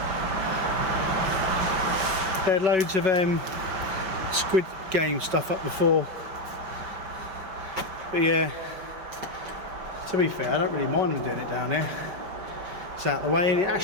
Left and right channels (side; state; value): left; late; 5.5 ms